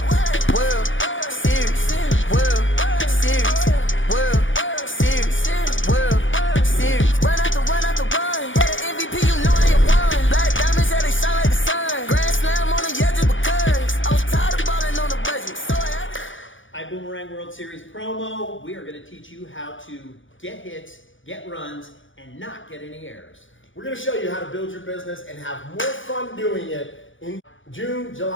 World Series, World Series, World Series, World Series. Run after run after run. Yeah, the MVP, you know I ain't won. Black diamonds, yeah, they shine like the sun. Grand slam on the yeah, just because I was tired of balling on the budget, so I had to. ibüümerang World Series promo. We are going to teach you how to get hits, get runs, and not get any errors. We're going to show you how to build your business and have more fun doing it in June,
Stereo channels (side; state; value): right; late; 0.56 ms